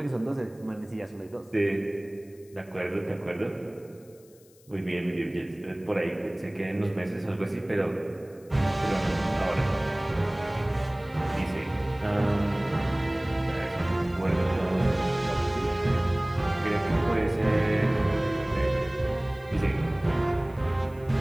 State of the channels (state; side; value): noise; left; hiss, 28 dB below the sound